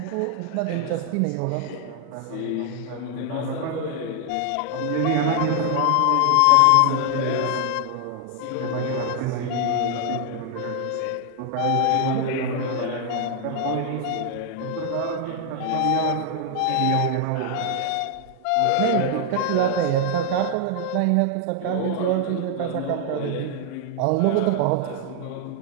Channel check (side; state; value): both; different; correlation 0.00